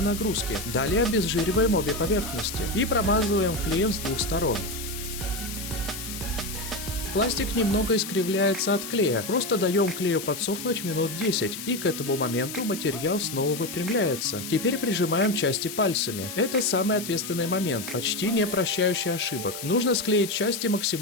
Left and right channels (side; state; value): left; noise; hiss, 9 dB below the sound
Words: нагрузки. Далее обезжириваем обе поверхности. И промазываем клеем с двух сторон. Пластик немного искривляется от клея, просто даем клею подсохнуть минут 10, и к этому моменту материал снова выпрямляется. Теперь прижимаем части пальцами. Это самый ответственный момент, почти не прощающий ошибок. Нужно склеить части